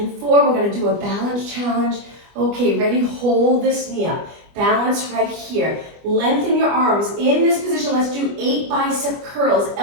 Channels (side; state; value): left; late; 25 ms